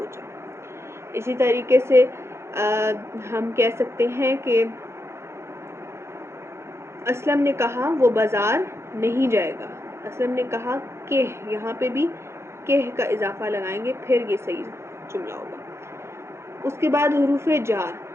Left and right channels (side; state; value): left; late; 0.13 ms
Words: جاؤ. اسی طریقے سے ہم کہہ سکتے ہیں کہ اسلم نے کہا وہ بازار نہیں جائے گا. اسلم نے کہا کہ, یہاں پہ بھی کہ کا اضافہ لگائیں گے پھر یہ صحیح جملہ ہوگا. اس کے بعد حروف جار.